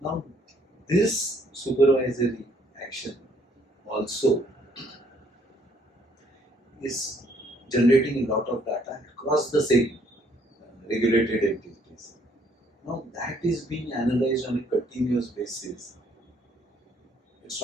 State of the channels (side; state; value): both; normal; correlation 0.65